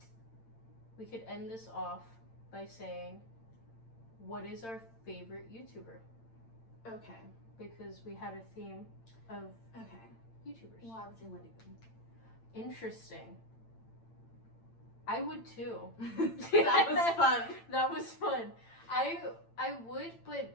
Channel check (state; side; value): late; right; 8.8 ms